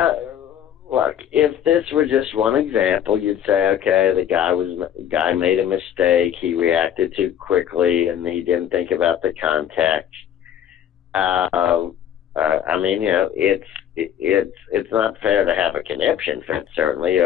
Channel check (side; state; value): right; quieter; 9.7 dB